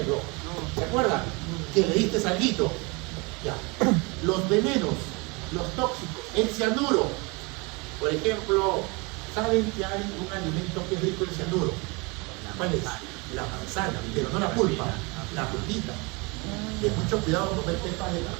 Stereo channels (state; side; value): quieter; left; 28.2 dB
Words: ¿Te acuerdas? Que le diste salguito. Ya. Los venenos, los tóxicos, el cianuro. Por ejemplo, ¿saben que hay un alimento que es rico en cianuro? ¿Cuál es? La manzana, pero no la pulpa, la frutita. De mucho cuidado comer pepas de